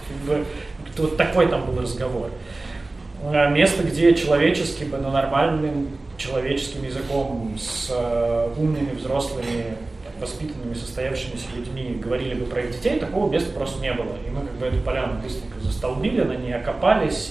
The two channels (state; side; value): quieter; left; 3.1 dB